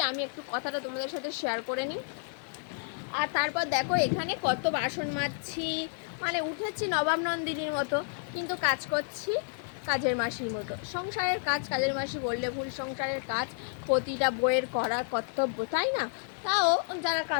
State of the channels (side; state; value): right; silent; 57 dB below the other